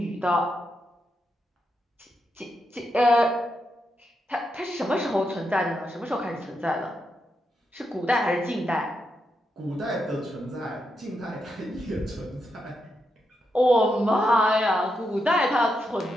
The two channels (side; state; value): both; normal; correlation 0.84